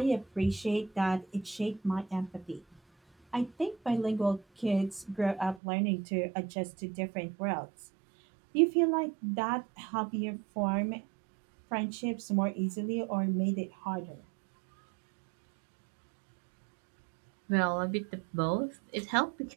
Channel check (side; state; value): left; drops out; at 5.6 s